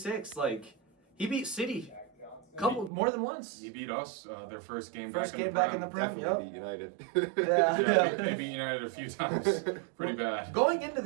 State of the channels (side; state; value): left; drops out; at 2.9 s